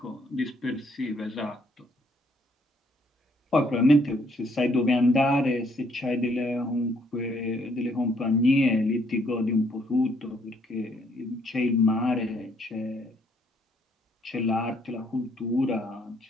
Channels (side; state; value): both; normal; correlation 0.68